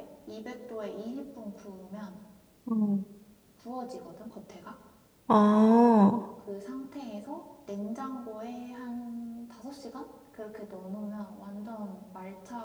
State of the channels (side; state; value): both; identical; correlation 1.00